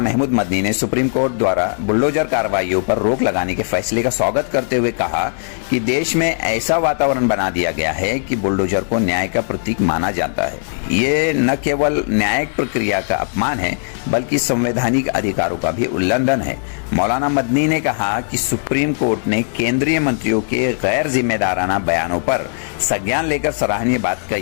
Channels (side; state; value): right; silent; digital silence